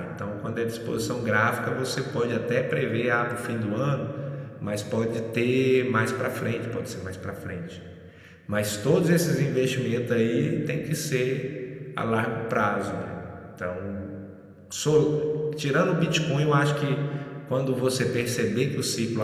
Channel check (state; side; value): identical; both; correlation 1.00